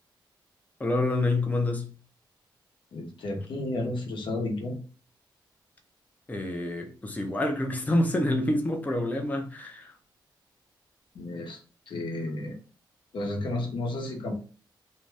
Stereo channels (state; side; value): normal; both; correlation 0.82